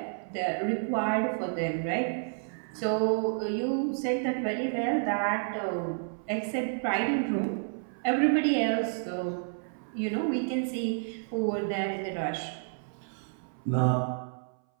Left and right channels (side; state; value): left; silent; 58 dB below the other